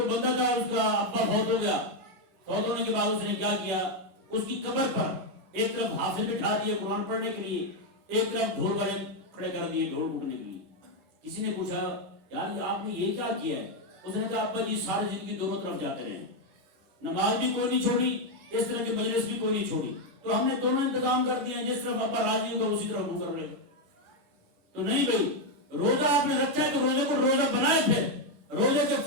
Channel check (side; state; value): left; late; 9.6 ms